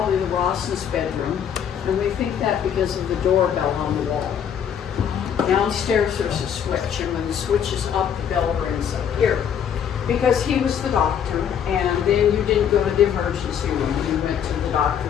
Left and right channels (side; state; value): right; quieter; 8.5 dB